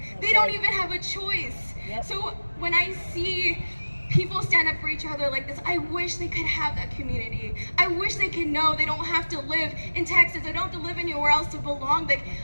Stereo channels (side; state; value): both; inverted; correlation -1.00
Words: They don't even have a choice. So when I see people stand up for each other like this, I wish they could have that community. I wish they could know they don't have to live in Texas. They don't have to live anywhere else to belong. Like,